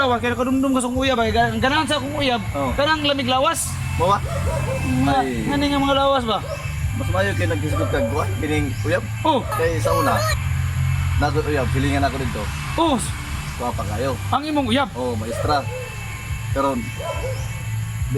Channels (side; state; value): both; identical; correlation 1.00